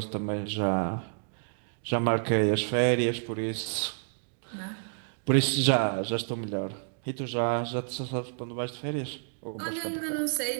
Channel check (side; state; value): left; silent; digital silence